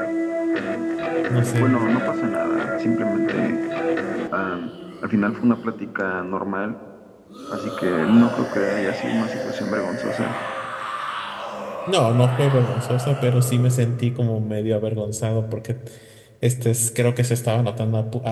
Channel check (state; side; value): identical; both; correlation 1.00